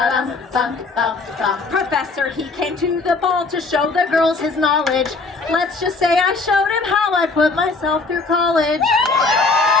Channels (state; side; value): quieter; right; 3.8 dB